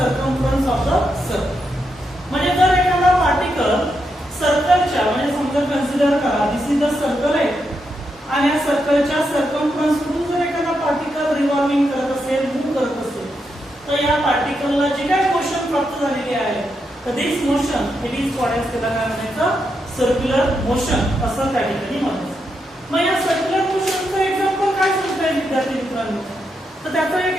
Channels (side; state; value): both; normal; correlation 0.83